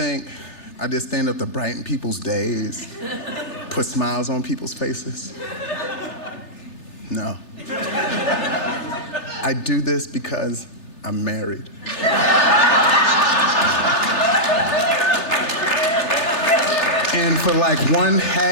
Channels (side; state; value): right; late; 3.3 ms